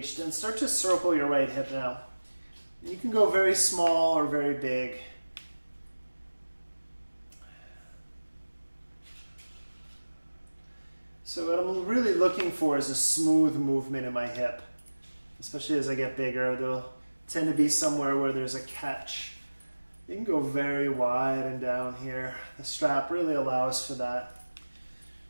and start to circle your right hip now. You can go very small or very big. So what I'm really looking for is a smooth movement in my hip. Especially as I get bigger, there'll tend to be somewhere where there's a catch. You can go very wide and down here. The strap really allows for that.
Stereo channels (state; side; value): inverted; both; correlation -1.00